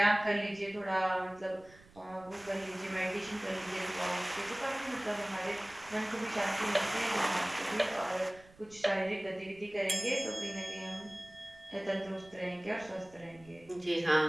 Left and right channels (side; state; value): right; noise; rumble, 24 dB below the sound